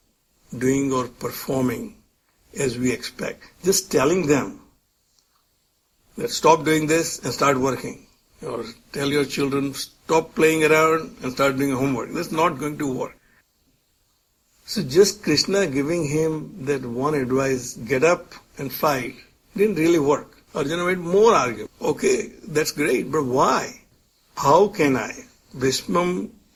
doing or performing as we expect, just telling them that stop doing this and start working. Or tell your children, stop playing around and start doing homework. That's not going to work. So just Krishna giving him that one advice, get up and fight, didn't really work. Arjuna made more argument. Okay, that's great, but why? How can I? Bhismam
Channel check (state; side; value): identical; both; correlation 1.00